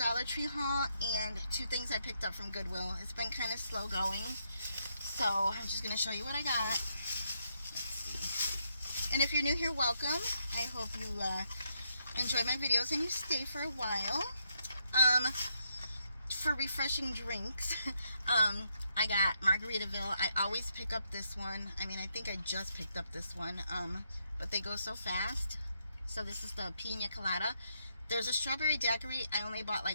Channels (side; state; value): both; inverted; correlation -0.78